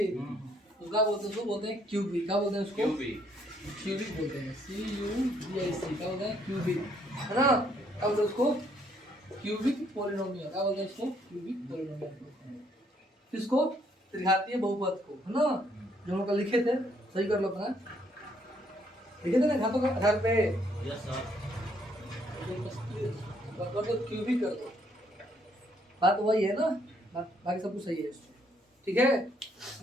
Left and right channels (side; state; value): both; normal; correlation 0.69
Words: तो क्या बोलते हैं उसको? बोलते हैं क्यूबिक। क्या बोलते हैं उसको? क्यूबिक बोलते हैं। CUBIC। क्या बोलते हैं? क्यूबिक, है ना। क्या बोलते हैं उसको? Cubic polynomial. क्या बोलते हैं उसको? क्यूबिक पॉलिनोमियल बोलते हैं किसको? त्रिघातीय बहुपद को, है ना। जो हम कल लिखे थे, सही कर लो अपना। लिखे थे ना घातों के आधार पे। Yes sir. कर दो, क्यूबिक कर दो। बात वही है ना, बाकी सब कुछ सही है। ठीक है।